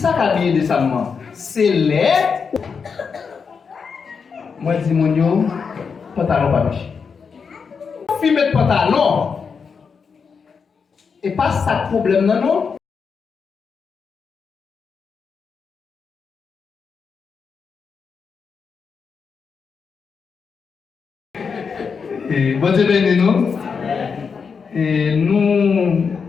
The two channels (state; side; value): quieter; right; 5.8 dB